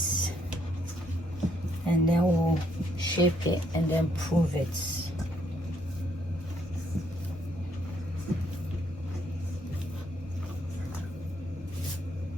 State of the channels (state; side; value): normal; both; correlation 0.71